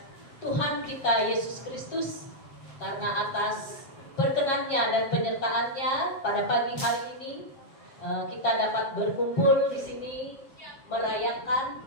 Tuhan kita Yesus Kristus karena atas perkenannya dan penyertaannya pada pagi hari ini kita dapat berkumpul di sini merayakan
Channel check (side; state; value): right; late; 7.4 ms